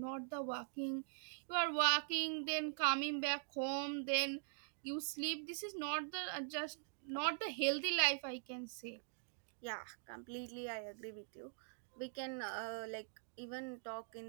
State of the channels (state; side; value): silent; left; digital silence